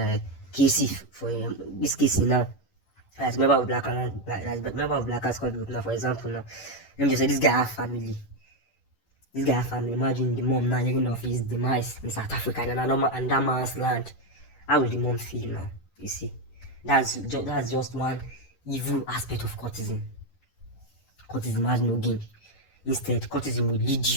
Casey for this Casey now. As a member of Blackers Court Group now, for example, now let me just say this guy have family. Imagine the mom now hearing of his demise in South Africa and that man's land. How will the mom feel now? You see, That's just one evil aspect of cultism. Cultism has no gain. Instead, cultism to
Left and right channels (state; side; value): late; right; 10 ms